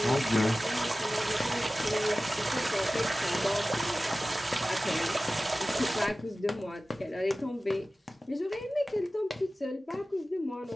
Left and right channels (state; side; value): normal; both; correlation 0.96